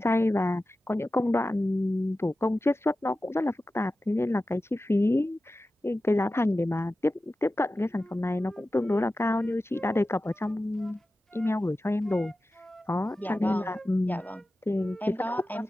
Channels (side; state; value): both; normal; correlation 0.94